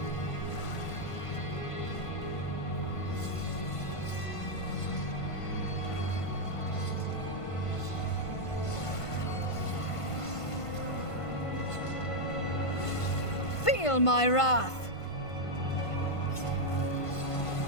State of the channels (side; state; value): right; late; 1.5 ms